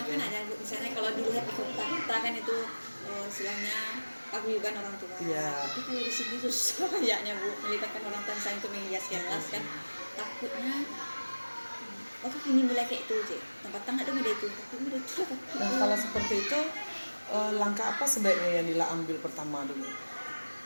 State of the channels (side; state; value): both; inverted; correlation -1.00